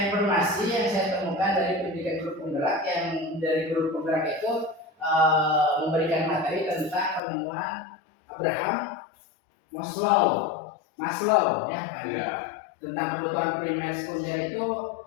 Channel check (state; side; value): drops out; right; at 7.2 s